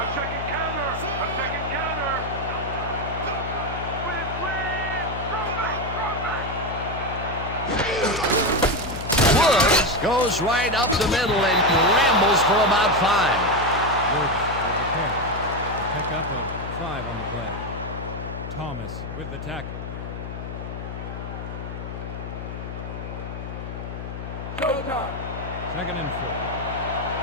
checking counter. I'm checking counter. Woods goes right up the middle and rambles for about 5. Woods with the carry. A pickup of 5 on the play. Thomas with the tackle. Showtime. 2nd and 4.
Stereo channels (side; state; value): left; noise; hum, 8 dB below the sound